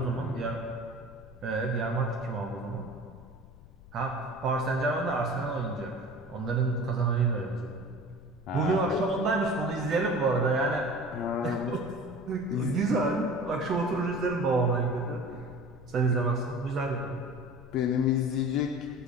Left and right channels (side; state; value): left; noise; rumble, 21 dB below the sound